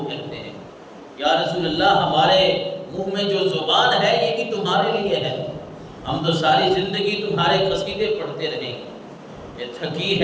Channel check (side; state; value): both; identical; correlation 1.00